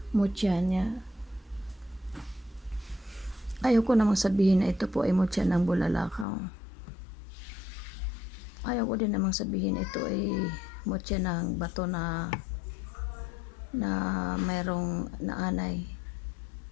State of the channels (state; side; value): drops out; right; at 6.2 s